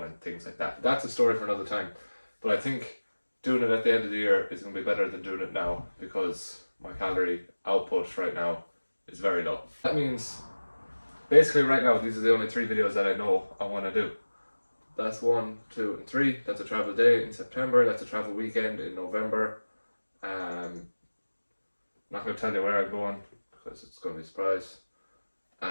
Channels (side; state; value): both; inverted; correlation -1.00